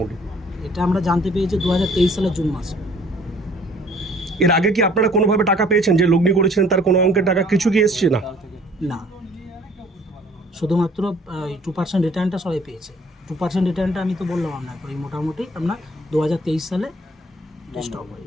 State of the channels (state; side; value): normal; both; correlation 0.56